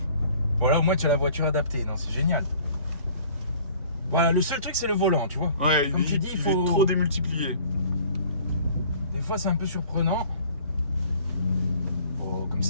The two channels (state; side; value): inverted; both; correlation -0.52